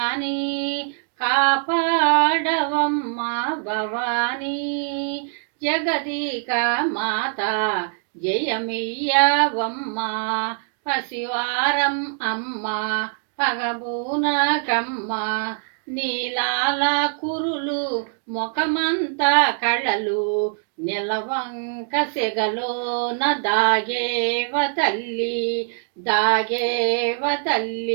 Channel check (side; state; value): left; silent; digital silence